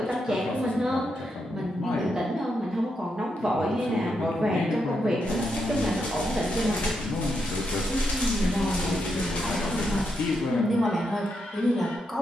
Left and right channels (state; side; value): normal; both; correlation 0.82